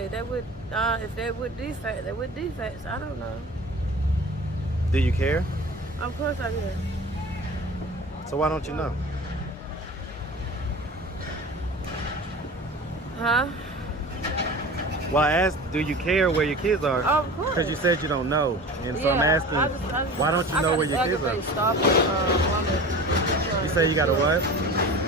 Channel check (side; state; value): both; normal; correlation 0.37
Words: They with, if they with defects, they with defects. I don't know. Do you care? Of course I do. So why don't you know? Huh? Well, I asked, do you care where your kids are? Oh, of course. Because you said you don't know. And so I'm asking, why don't you know where your kids are? You say you got a what?